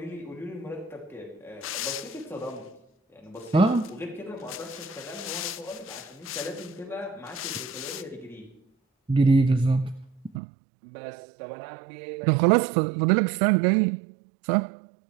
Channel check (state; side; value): drops out; left; at 10.4 s